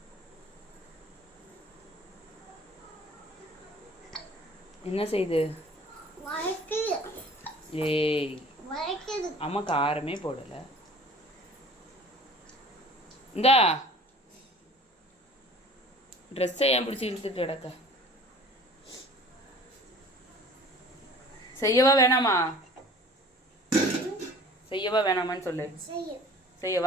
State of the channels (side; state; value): both; normal; correlation 0.47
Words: என்ன செய்யுது? ஏய் அம்மா காரமே போடல. இந்தா ட்ரெஸ்ஸை ஏன் பிடிச்சி இழுத்துட்டு கிடக்க? செய்யவா வேணாமா? செய்யவா வேணாமான்னு சொல்லு.